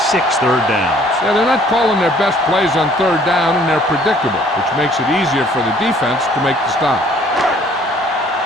third downs. Yeah, they're not calling their best plays on third down, and they're predictable, which makes it easier for the defense to make the stop.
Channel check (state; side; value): normal; both; correlation 0.58